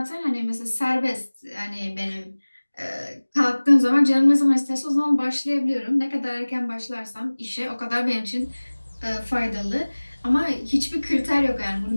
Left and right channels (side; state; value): both; inverted; correlation -1.00